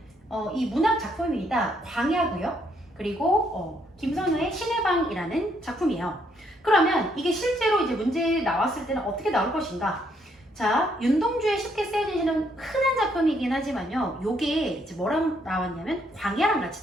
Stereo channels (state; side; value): normal; both; correlation 0.71